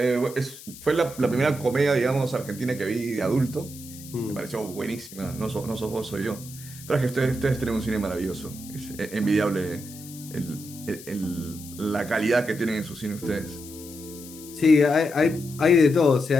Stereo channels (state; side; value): noise; left; hiss, 16 dB below the sound